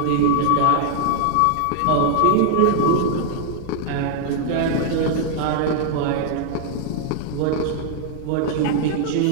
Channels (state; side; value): different; both; correlation -0.01